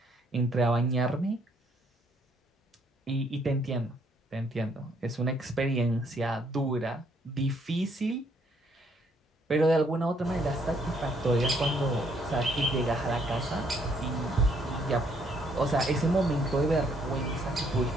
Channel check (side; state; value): both; normal; correlation 0.68